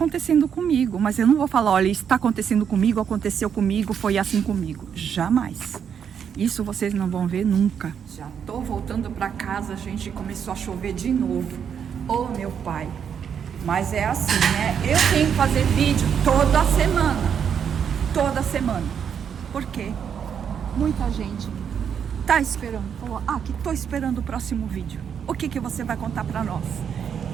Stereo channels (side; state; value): left; quieter; 7.8 dB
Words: comigo, mas eu não vou falar, olha, está acontecendo comigo, aconteceu comigo, foi assim comigo. Jamais. Isso vocês não vão ver nunca. Já tô voltando para casa, gente, começou a chover de novo. Oh, meu pai. Mas é assim, né? Eu tenho que fazer vídeo toda semana. Toda semana. Por quê? Muita gente tá esperando. Falou, que tô esperando o próximo vídeo. O que você vai contar para nós?